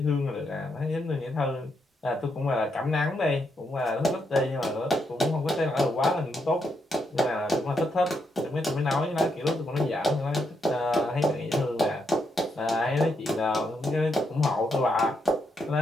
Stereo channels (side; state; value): both; normal; correlation 0.79